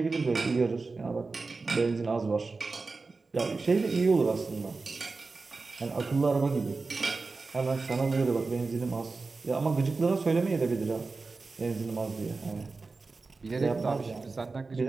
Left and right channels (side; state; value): left; quieter; 4.0 dB